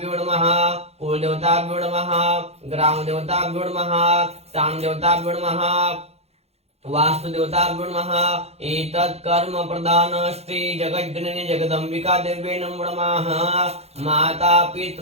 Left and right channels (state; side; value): late; left; 0.30 ms